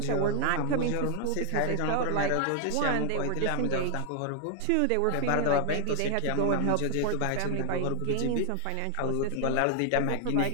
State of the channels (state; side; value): different; both; correlation 0.00